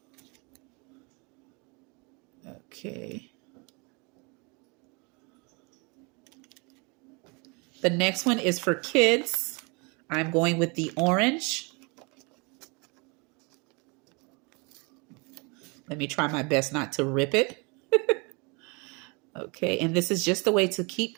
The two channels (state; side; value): quieter; left; 30.2 dB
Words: Okay. The next one is for kids. I'm going with the orange. Let me try my best not to rip it. Okay, and this is just a way to keep